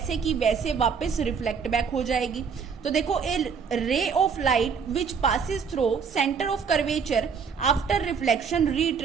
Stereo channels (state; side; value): quieter; left; 6.2 dB